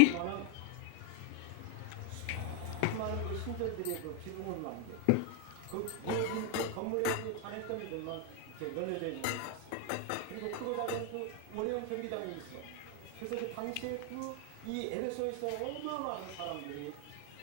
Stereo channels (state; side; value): different; both; correlation 0.00